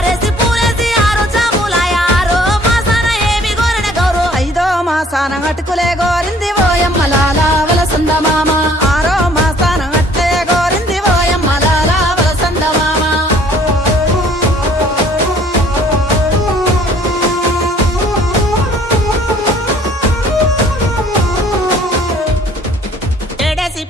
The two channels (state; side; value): normal; both; correlation 0.57